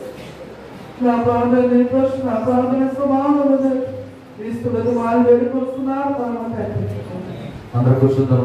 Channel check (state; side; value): identical; both; correlation 1.00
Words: నా ప్రాంతాన్ని నా ప్రాంతాన్ని సమానం క్రీస్తులకు వాళ్ళు వేడుకొస్తున్నారు. అందరూ